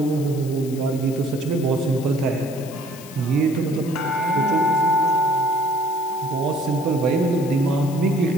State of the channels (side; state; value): left; noise; hiss, 17 dB below the sound